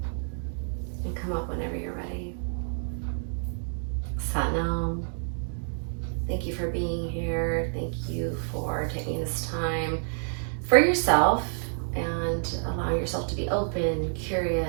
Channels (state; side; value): silent; left; digital silence